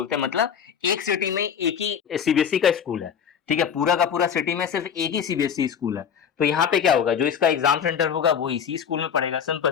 हैं, मतलब एक सिटी में एक ही सीबीएसई का स्कूल है। ठीक है, पूरा का पूरा सिटी में सिर्फ एक ही सीबीएसई स्कूल है। तो यहाँ पे क्या होगा, जो इसका एग्जाम सेंटर होगा वो इसी स्कूल में पड़ेगा,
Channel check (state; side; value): quieter; right; 7.8 dB